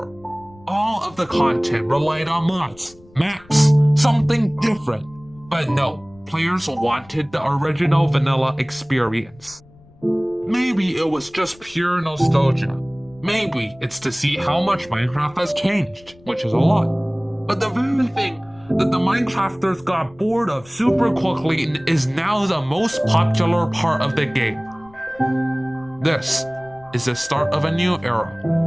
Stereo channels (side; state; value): left; noise; rumble, 26 dB below the sound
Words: all of the content relied on mods, maps, something different. But no, players wanted the original vanilla experience. Maybe it was just pure nostalgia. Maybe it's to see how much Minecraft has changed, which is a lot. But the very thing that the Minecrafters got bored of super quickly is now the most popular part of the game. This is the start of a new era.